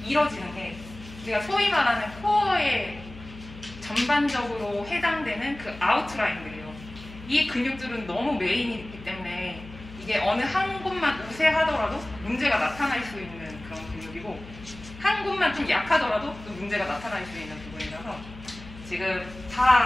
이뤄지는 게 우리가 소위 말하는 코어에 전반적으로 해당되는 그 아웃라인들이에요. 이 근육들은 너무 메인이기 때문에 이게 어느 한 곳만 우세하더라도 문제가 나타날 수 있는 그런 근육이고 한 곳만 좀 약하더라도 또 문제가 나타날 수 있는 부분이라서 지금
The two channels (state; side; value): noise; left; hum, 16 dB below the sound